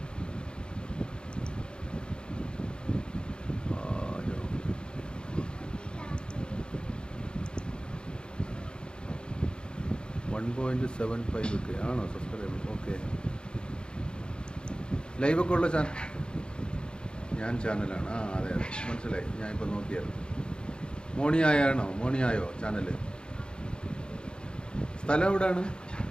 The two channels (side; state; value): right; late; 0.051 ms